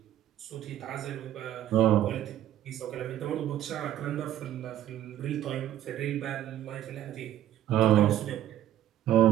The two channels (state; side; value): quieter; left; 12.1 dB